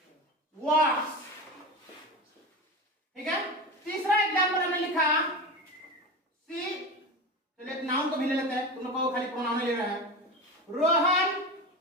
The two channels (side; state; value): both; normal; correlation 0.26